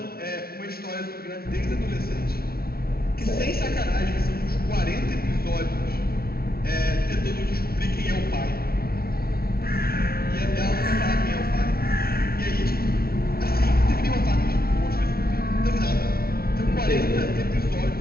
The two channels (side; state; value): right; late; 0.44 ms